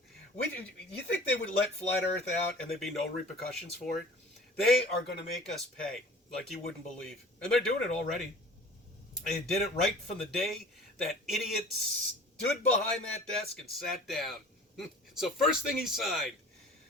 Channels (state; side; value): normal; both; correlation 0.45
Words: You think they would let Flat Earth out and there'd be no repercussions for it? They are going to make us pay like you wouldn't believe, and they're doing it already. They did it right from the day that idiot stood behind that desk and sat down. So first thing he signed,